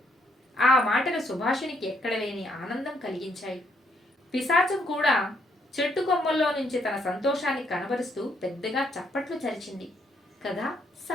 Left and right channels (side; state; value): both; normal; correlation 0.72